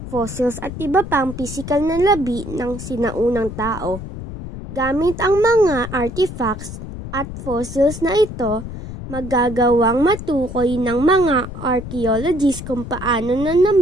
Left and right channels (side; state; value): left; noise; rumble, 10 dB below the sound